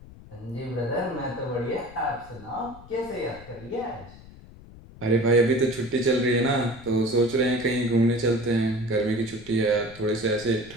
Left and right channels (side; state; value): left; noise; rumble, 19 dB below the sound